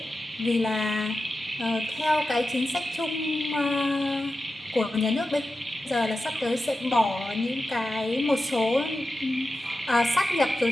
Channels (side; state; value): both; normal; correlation 0.91